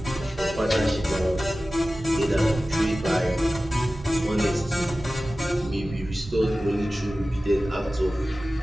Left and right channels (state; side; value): normal; both; correlation 0.96